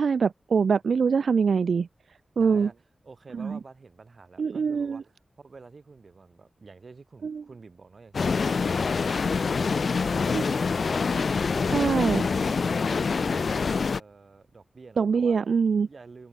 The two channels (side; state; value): both; normal; correlation 0.85